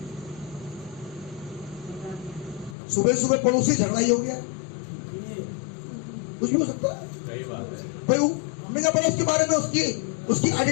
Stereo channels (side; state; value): right; drops out; at 2.8 s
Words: सुबह सुबह पड़ोसी झगड़ा ही हो गया, कुछ भी हो सकता है सही बात है। भाई। हमने कहा पहले उसके बारे में, उसकी